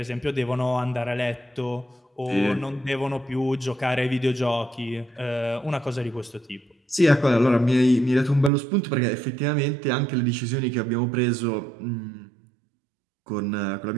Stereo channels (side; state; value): left; drops out; at 8.5 s